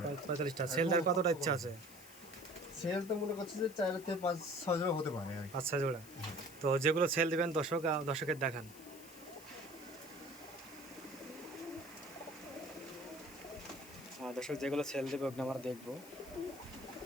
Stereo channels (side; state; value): left; noise; hiss, 18 dB below the sound